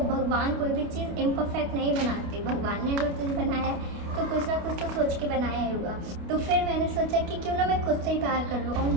भगवान कोई भी चीज़ इम्परफेक्ट नहीं बनाते। भगवान ने अगर तुझे बनाया है तो कुछ ना कुछ तो सोच के बनाया ही होगा। तो फिर मैंने सोचा कि क्यों ना मैं खुद से ही प्यार कर लूँ। और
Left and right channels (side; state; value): left; late; 28 ms